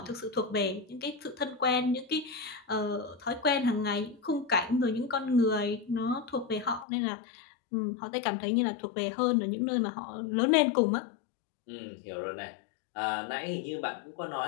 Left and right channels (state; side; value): drops out; right; at 6.9 s